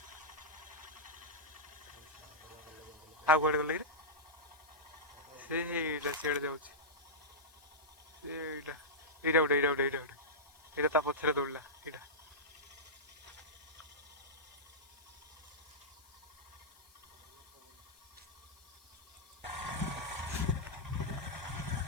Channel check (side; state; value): left; noise; hiss, 26 dB below the sound